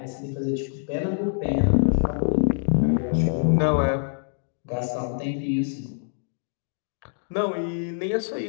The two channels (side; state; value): right; silent; digital silence